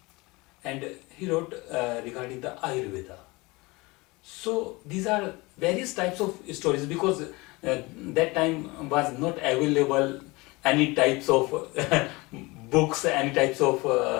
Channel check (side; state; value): right; quieter; 23.8 dB